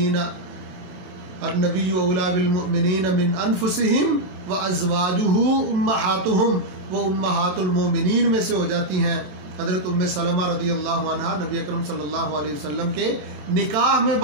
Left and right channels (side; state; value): left; late; 28 ms